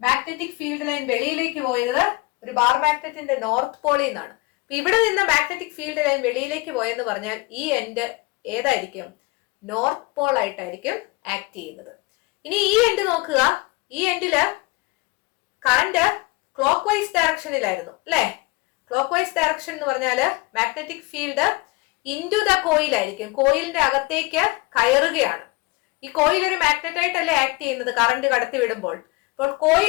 ഫീൽഡ് ലൈൻ വെളിയിലേക്ക് പോയത്? ഒരു ബാർ മാഗ്നറ്റിന്റെ നോർത്ത് പോളിൽ നിന്നാണ്. അപ്പൊ ഇവിടെ നിന്ന് മാഗ്നറ്റിക് ഫീൽഡ് ലൈൻ വെളിയിലേക്ക് പോയെന്ന് പറഞ്ഞാൽ ഈ എൻഡ് ഏതായിരിക്കും? നോർത്ത് പോൾ ആയിട്ടായിരിക്കും ആക്ട് ചെയ്യുന്നത്. ഇനി ഈ എൻഡ് നോക്കുക. ഈ എൻഡില് കറന്റ് ക്ലോക്ക് വൈസ് ഡയറക്ഷനിലായിരുന്നു അല്ലെ. ക്ലോക്ക് വൈസ് ഡയറക്ഷൻ എന്ന് പറഞ്ഞാല് മാഗ്നറ്റിക് ഫീൽഡ് ഇൻടു ദ കോയിലായിരിക്കും, കോയിലിന്റെ അകത്തേക്ക് കയറുകയാണ്. ഈ കോയിൽ ഒരു മാഗ്നറ്റ് ആയിട്ടല്ലേ ആക്ട് ചെയ്യുന്നത് കറന്റ് കടത്തി വിടുമ്പോൾ. അപ്പോൾ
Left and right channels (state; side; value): quieter; right; 23.6 dB